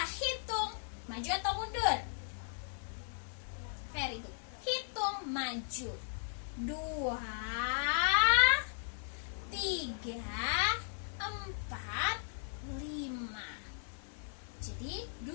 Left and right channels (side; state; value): right; silent; digital silence